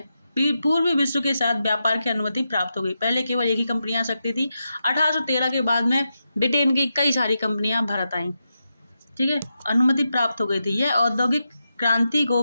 विश्व के साथ व्यापार की अनुमति प्राप्त हो गई। पहले केवल एक ही कंपनी आ सकती थी। 1813 के बाद में ब्रिटेन की कई सारी कंपनियां भारत आईं। ठीक है, अनुमति प्राप्त हो गई थी। यह औद्योगिक क्रांति को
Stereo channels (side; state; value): both; inverted; correlation -0.87